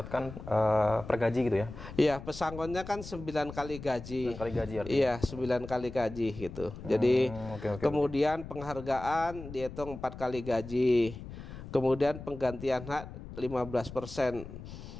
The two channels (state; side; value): noise; left; rumble, 12 dB below the sound